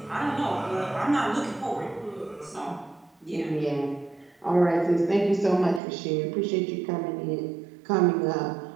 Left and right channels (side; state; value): left; drops out; at 5.8 s